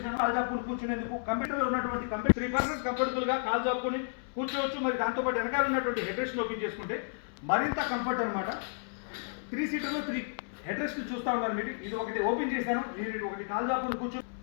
కాల్ జాపుకుని కూర్చునేందుకు కంప్యూటర్లో ఉన్నటువంటి కంప్యూటర్ 3 పర్సన్స్ కంఫర్టబుల్గా కాల్ జాపుకుని కూర్చోవచ్చు. మరి దాంతోపాటు వెనకాల ఉన్నటువంటి హెడ్ రెస్ట్ ఓపెన్ చేసుకుంటే మరింత కంఫర్ట్ అనమాట. 3 సీటర్లో 3 హెడ్ రెస్ట్ చూస్తూ ఉన్నారు మీరు. ఇది ఒకటి ఓపెన్ చేశాను, నేను ఒకటి కాల్ జాపుకుని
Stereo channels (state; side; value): silent; right; 56 dB below the other